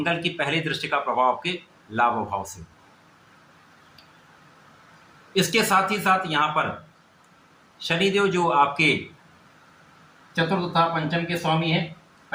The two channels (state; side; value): identical; both; correlation 1.00